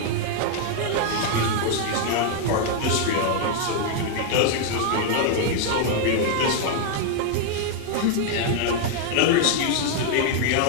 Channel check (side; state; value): both; different; correlation 0.00